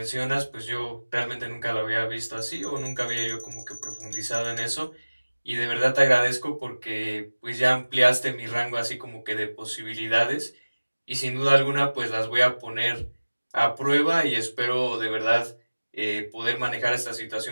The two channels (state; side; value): inverted; both; correlation -1.00